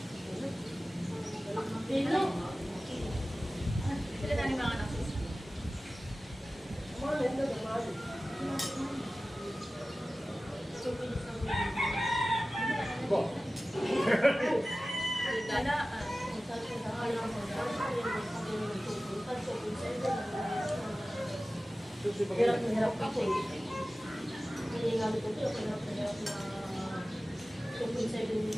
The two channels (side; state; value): both; normal; correlation 0.96